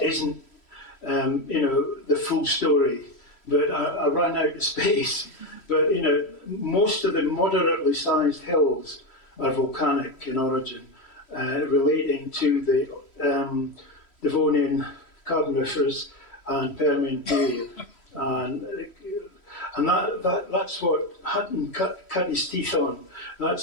isn't, the full story, but I ran out of space. But, most of the moderately sized hills are volcanic in origin, relating to the Devonian Carboniferous and Permian period. And that's what Hutton cut his teeth on.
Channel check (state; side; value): late; right; 3.1 ms